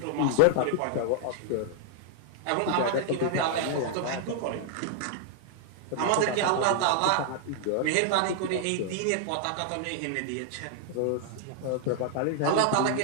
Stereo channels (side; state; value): both; different; correlation 0.00